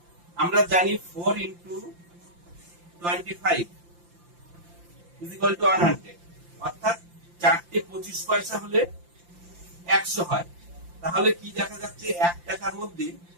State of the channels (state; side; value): late; left; 5.8 ms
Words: আমরা জানি 4 ইন্টু 25 is equal to 100, অর্থাৎ 4টে 25 পয়সা হলে 100 হয়। তাহলে কি দেখা যাচ্ছে, 1 টাকার